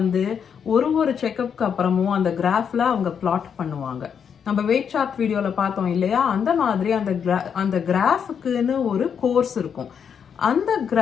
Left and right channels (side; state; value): right; quieter; 7.4 dB